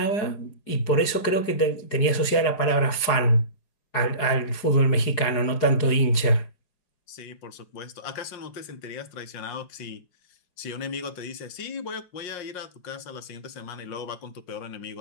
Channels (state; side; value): late; right; 4.8 ms